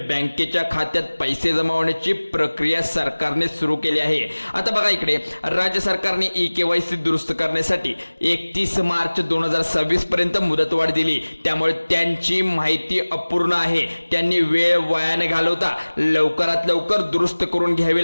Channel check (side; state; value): both; inverted; correlation -1.00